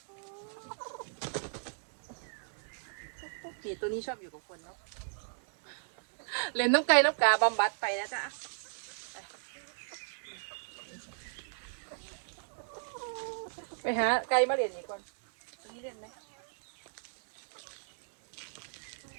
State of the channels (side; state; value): left; silent; digital silence